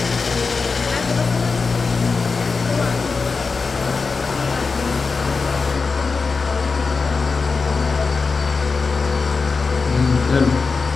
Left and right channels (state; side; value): quieter; right; 4.6 dB